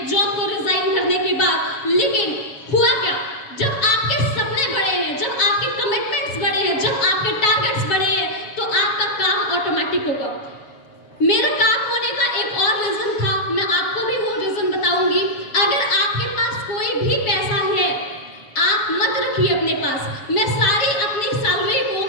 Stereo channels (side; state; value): right; late; 7.2 ms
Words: जॉब को रिजाइन करने के बाद। लेकिन हुआ क्या, जब आपके सपने बड़े हैं, जब आपके कमिटमेंट्स बड़े हैं, जब आपके टारगेट्स बड़े हैं, तो आपका काम ऑटोमेटिक होगा। मेरा काम होने का एक और रीजन था, मैं आपको भी वो रीजन बताऊंगी। अगर आपके पास कोई भी पैसा है, आप मत रखिए अपने पास। मैं सारी अपनी सैलरी